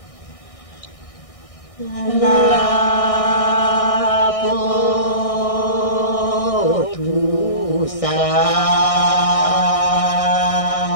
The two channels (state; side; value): late; right; 1.6 ms